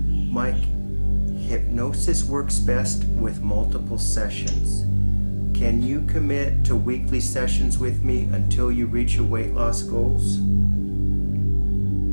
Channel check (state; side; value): inverted; both; correlation -1.00